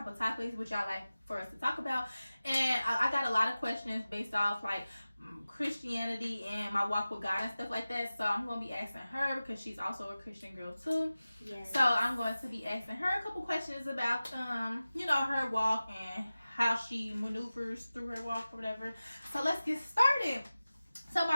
of topics would y'all like for us to talk about, and I got a lot of questions based off, like, Christianity and my walk with God and stuff like that. So I'm going to be asking her because she's also a Christian girl too. Yes. So I'm going to be asking her a couple questions about, her walk and how she maneuvers through her walk or whatever. So let's get started. So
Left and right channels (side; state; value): both; inverted; correlation -0.96